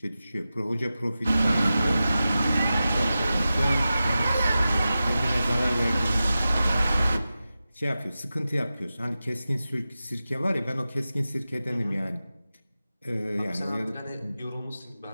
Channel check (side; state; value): both; inverted; correlation -0.93